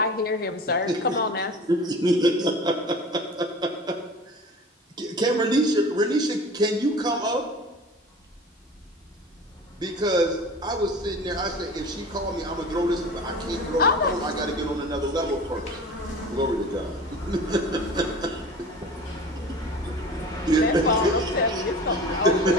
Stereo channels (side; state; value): both; normal; correlation 0.39